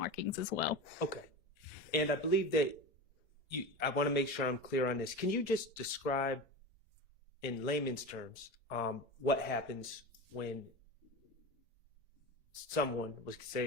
as well. Okay. And I believe that I want to make sure I'm clear on this. Can you just describe in layman's terms what happens when someone was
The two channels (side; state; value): both; normal; correlation 0.26